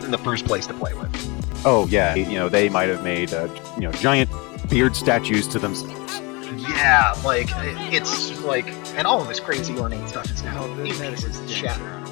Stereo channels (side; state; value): right; quieter; 27.7 dB